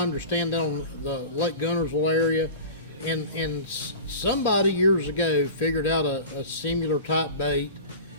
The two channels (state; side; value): inverted; both; correlation -0.34